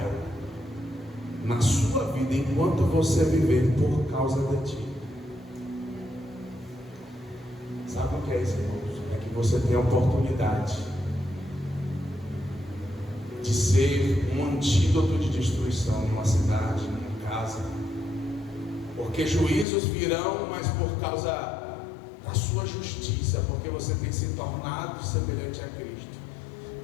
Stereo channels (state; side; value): drops out; right; at 19.7 s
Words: na sua vida enquanto você viver por causa de ti. Sabe o que é isso, irmãos? É que você tem a oportunidade de ser um antídoto de destruição numa cidade, numa casa, porque juízos virão, mas por causa da sua justiça, porque você tem se tornado semelhante a Cristo,